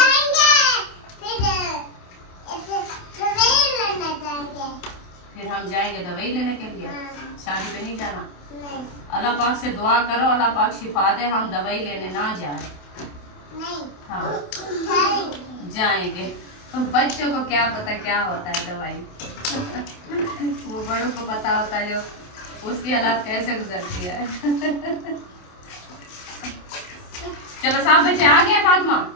फिर हम जाएंगे दवाई लेने के लिए, शादी पे नहीं जाना। अल्लाह पाक से दुआ करो अल्लाह पाक शिफा दे, हम दवाई लेने ना जाए। हाँ जाएंगे, तो बच्चों को क्या पता क्या होता है दवाई। वो बड़ों को पता होता है जो उसकी हालात कैसे गुजरती है। चलो सब बच्चे आ गए, फातिमा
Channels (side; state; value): right; late; 28 ms